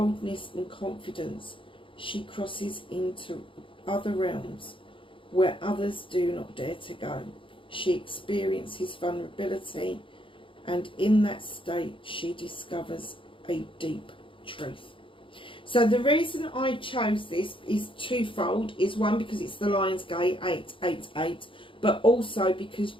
and confidence, she crosses into other realms where others do not dare to go. She experiences vulnerability, and in that state she discovers a deep truth. So the reason I chose this is twofold. Is one, because it's the Lion's Gate 888, but also because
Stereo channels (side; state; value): right; late; 0.25 ms